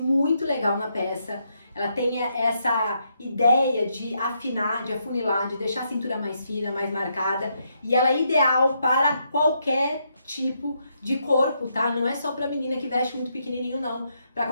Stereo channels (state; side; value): inverted; both; correlation -0.78